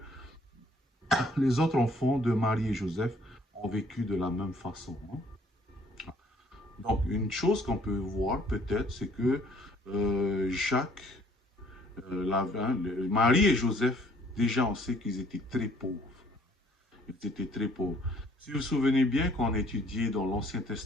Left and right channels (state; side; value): normal; both; correlation 0.60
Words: les autres enfants de Marie et Joseph ont vécu de la même façon. Hein. Donc, une chose qu'on peut voir peut-être, c'est que Jacques, Marie et Joseph, déjà on sait qu'ils étaient très pauvres. Ils étaient très pauvres. Si vous vous souvenez bien, quand on étudiait dans l'Ancien